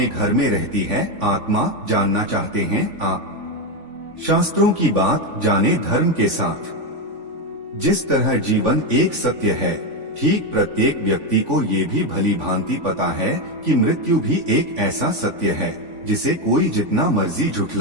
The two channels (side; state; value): left; late; 3.5 ms